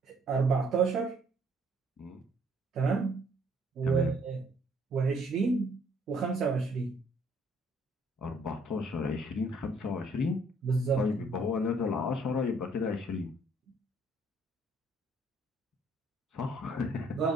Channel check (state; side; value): normal; both; correlation 0.64